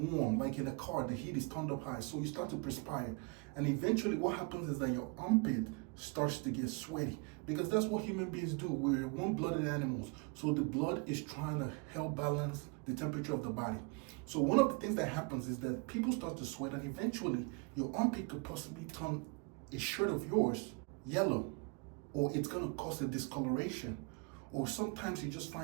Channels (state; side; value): quieter; left; 31.2 dB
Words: like in a car, the heat is turned up high, so you start to perspire. And eventually what happens is that your armpit starts to get sweaty, because that's what human beings do. We're warm-blooded animals, so the blood is trying to help balance the temperature of the body. So one of the things that happens is that people start to sweat, and eventually your armpit could possibly turn a shirt of yours yellow, or it's going to cause a discoloration, or sometimes you just